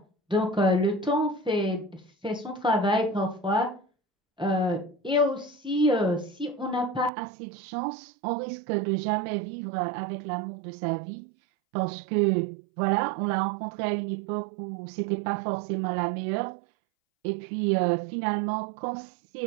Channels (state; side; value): drops out; left; at 7.1 s